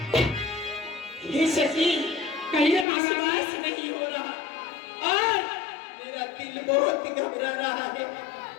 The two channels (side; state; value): right; drops out; at 2.9 s